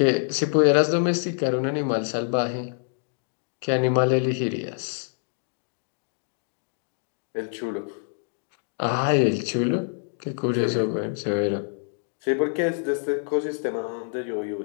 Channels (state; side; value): silent; right; 61 dB below the other